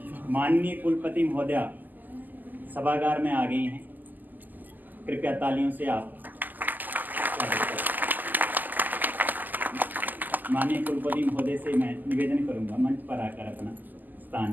माननीय कुलपति महोदया सभागार में आ गई हैं। कृपया तालियों से आप माननीय कुलपति महोदय से मैं निवेदन करूंगा मंच पर आकर अपना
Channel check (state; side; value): late; left; 0.085 ms